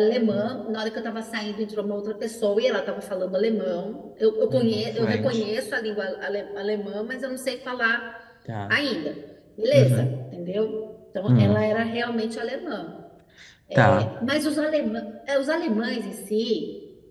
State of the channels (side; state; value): both; identical; correlation 1.00